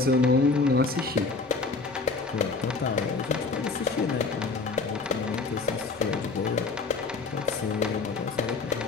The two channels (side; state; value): right; quieter; 4.0 dB